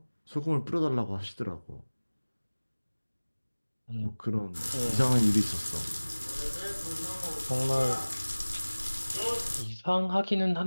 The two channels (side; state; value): both; inverted; correlation -1.00